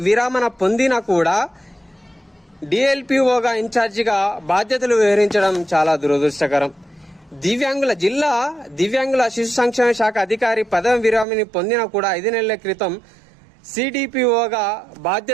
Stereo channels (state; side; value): drops out; left; at 11.2 s